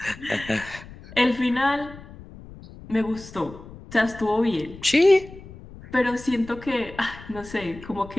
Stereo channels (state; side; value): noise; left; rumble, 17 dB below the sound